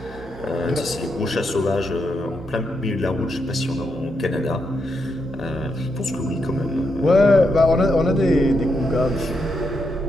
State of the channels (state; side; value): normal; both; correlation 0.81